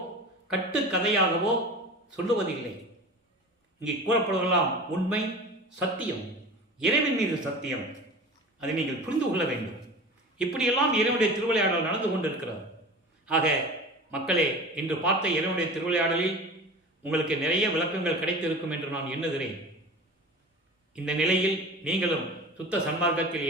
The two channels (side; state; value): both; normal; correlation 0.35